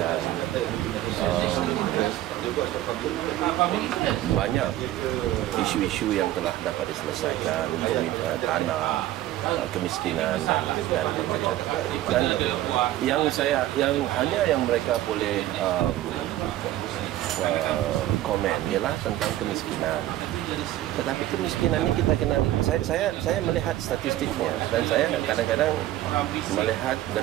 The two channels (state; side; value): quieter; left; 14.2 dB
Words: Banyak isu-isu yang telah dapat diselesaikan, tanah, kemiskinan dan bermacam. Dan yang mereka boleh komen ialah tentang kemiskinan. Tetapi kemiskinan ini kita kena, saya melihat statistiknya dan saya kadang-kadang melihat dan